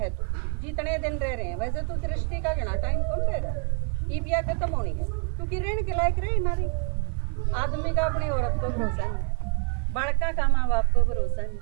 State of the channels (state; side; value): quieter; left; 39.2 dB